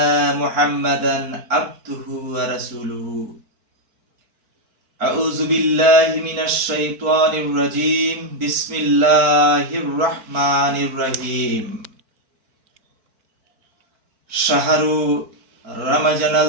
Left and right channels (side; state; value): left; late; 4.5 ms